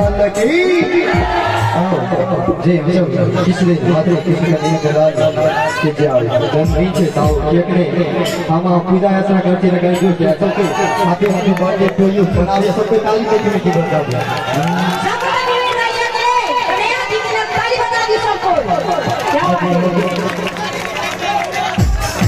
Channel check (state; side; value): identical; both; correlation 1.00